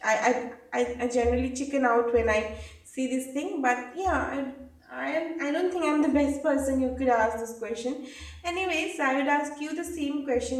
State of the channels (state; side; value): identical; both; correlation 1.00